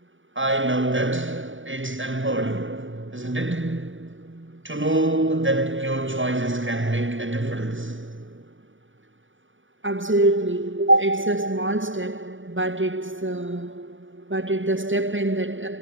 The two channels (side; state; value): left; late; 0.57 ms